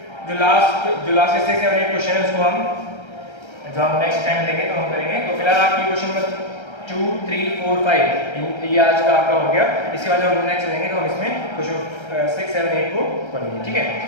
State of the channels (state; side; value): late; right; 1.3 ms